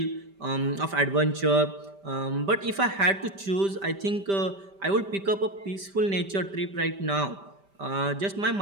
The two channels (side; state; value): left; late; 5.1 ms